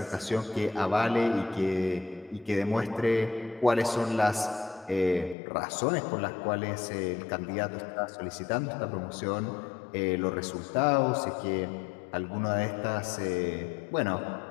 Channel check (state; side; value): drops out; right; at 5.4 s